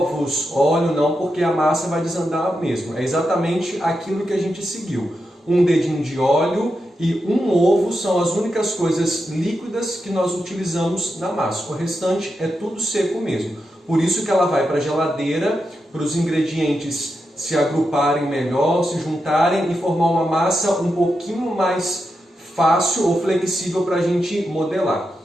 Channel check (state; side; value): normal; both; correlation 0.87